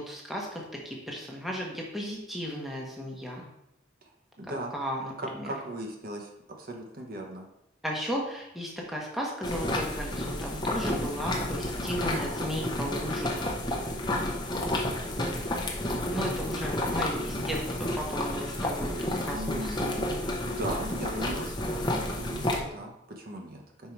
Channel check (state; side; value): normal; both; correlation 0.50